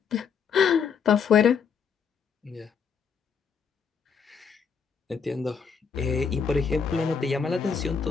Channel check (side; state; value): right; quieter; 6.4 dB